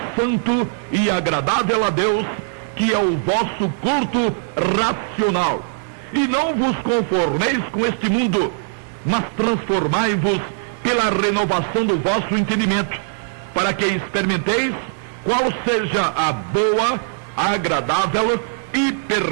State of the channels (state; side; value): silent; left; digital silence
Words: santo e agradável a Deus, que é o vosso culto racional. E não vos conformeis com este mundo, mas transformai-vos pela renovação do vosso entendimento, para que experimenteis qual seja a boa, agradável e